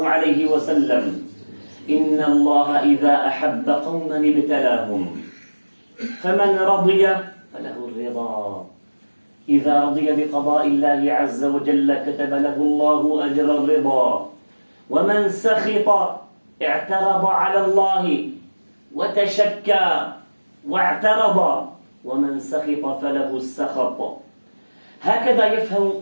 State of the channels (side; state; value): both; inverted; correlation -1.00